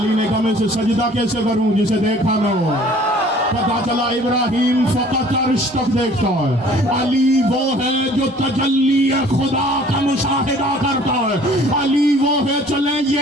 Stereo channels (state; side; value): normal; both; correlation 0.52